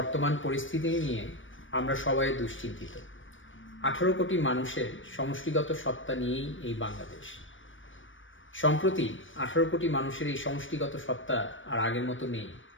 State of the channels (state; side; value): late; right; 0.56 ms